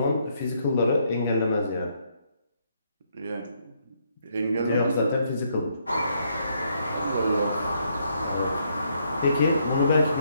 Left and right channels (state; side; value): inverted; both; correlation -0.73